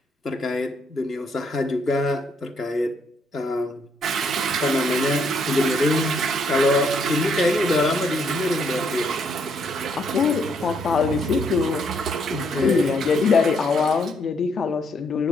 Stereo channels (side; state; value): both; normal; correlation 0.72